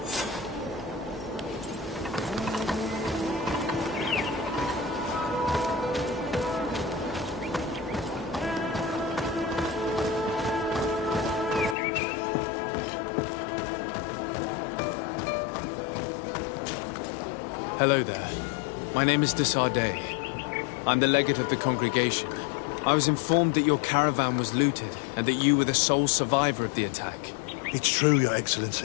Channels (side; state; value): right; drops out; at 11.8 s